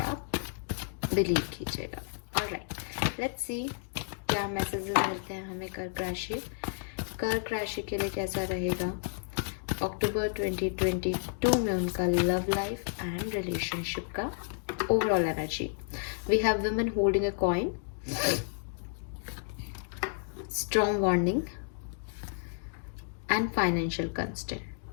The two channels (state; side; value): silent; right; digital silence